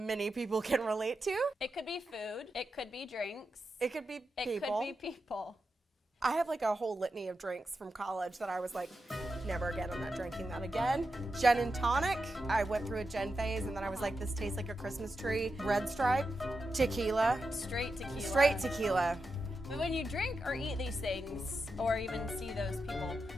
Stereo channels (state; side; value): normal; both; correlation 0.88